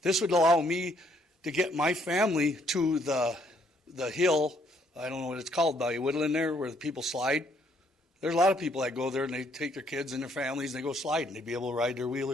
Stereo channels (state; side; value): normal; both; correlation 0.68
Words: This would allow me to get my family to the hill, I don't know what it's called by Woodland there, where the people slide. There's a lot of people that go there and they take their kids and their families and they go sliding. They'd be able to ride their